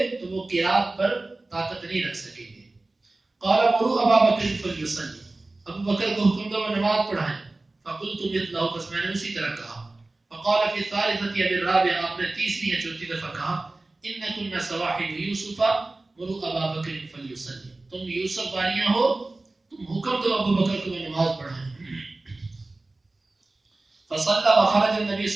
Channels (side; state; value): left; quieter; 3.1 dB